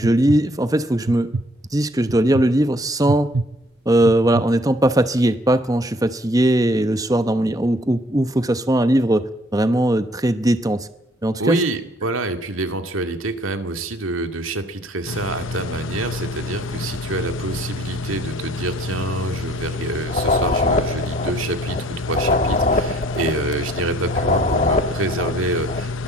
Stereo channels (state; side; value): normal; both; correlation 0.60